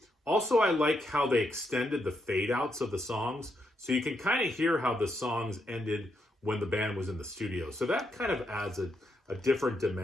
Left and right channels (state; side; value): normal; both; correlation 0.80